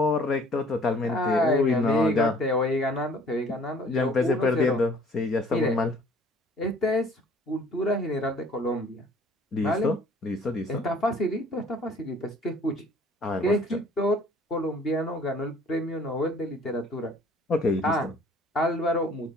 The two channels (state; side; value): normal; both; correlation 0.54